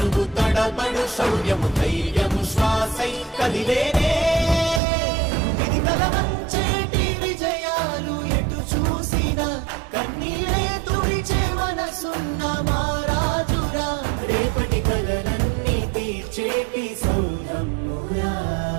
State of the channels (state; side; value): drops out; left; at 4.8 s